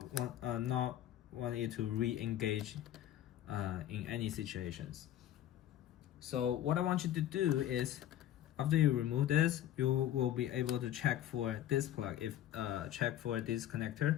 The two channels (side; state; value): right; quieter; 12.0 dB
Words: want it to re-engage in any situations. So what I want you to do is, after you remove this, you will be able to check for this plug, check for this